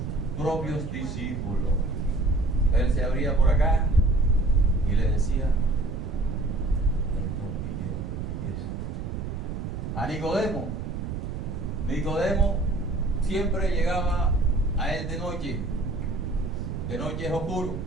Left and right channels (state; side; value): noise; right; rumble, 5 dB below the sound